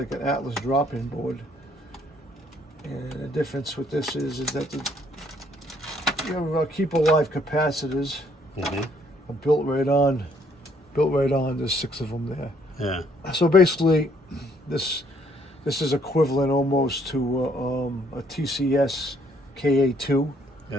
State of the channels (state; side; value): normal; both; correlation 0.66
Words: an Atlas drop-in board, and the difference with this is that your keep alive capacitors are built right on. There's 6 of them there. Yeah. So basically, this is equivalent almost to a TCS KA2,